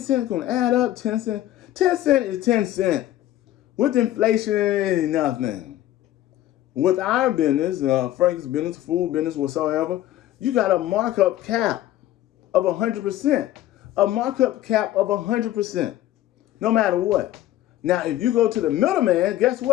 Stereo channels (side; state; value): right; quieter; 13.8 dB